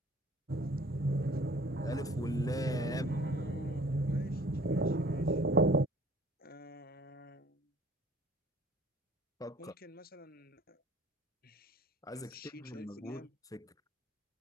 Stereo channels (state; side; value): normal; both; correlation 0.53